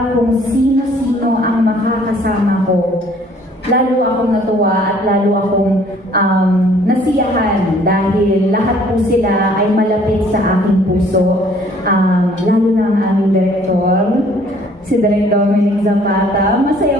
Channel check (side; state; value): both; normal; correlation 0.58